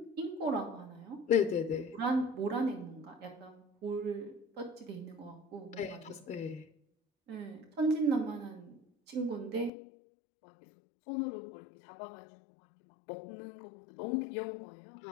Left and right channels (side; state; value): right; drops out; at 9.7 s